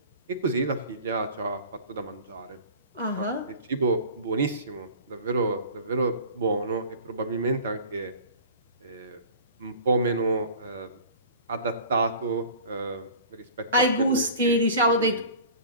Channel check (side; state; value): both; inverted; correlation -0.41